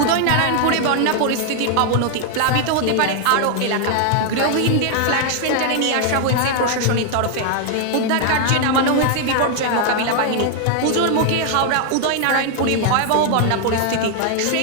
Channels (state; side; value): different; both; correlation 0.00